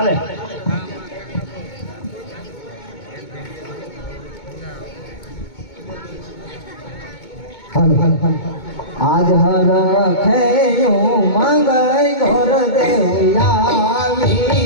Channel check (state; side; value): late; right; 2.2 ms